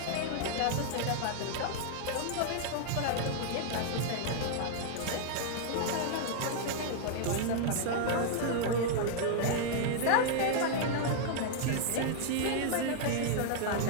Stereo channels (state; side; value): different; both; correlation -0.01